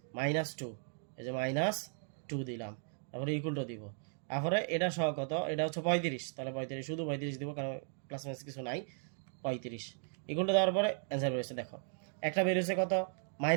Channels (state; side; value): silent; left; 53 dB below the other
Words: -2, এই যে -2 দিলাম, তারপরে ইকুয়াল টু দিব। তারপরে এটা সহ কত, এটা হচ্ছে 35, তাহলে 35 শুধু 35 দিব, কারণ প্লাস মাইনাস কিছু নাই, 35 ইকুয়াল টু দেওয়ার পরে অ্যান্সার বেরিয়েছে। দেখো একটা বেরিয়েছে কত,